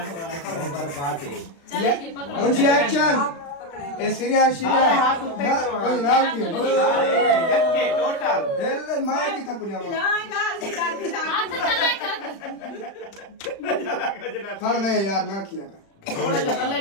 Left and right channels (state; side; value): late; right; 36 ms